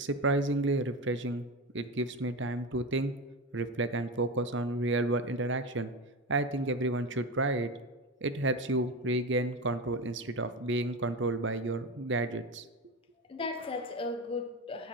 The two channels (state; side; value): normal; both; correlation 0.21